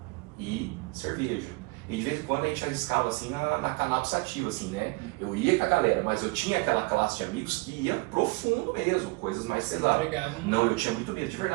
e cerveja. E de vez em quando a gente arriscava assim na cannabis sativa, assim, né? Eu ia com a galera, mas eu tinha aquela classe de amigos que ia profundo mesmo, coisas mais pesadas. Não, eu tinha muito medo, de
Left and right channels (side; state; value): left; quieter; 26.3 dB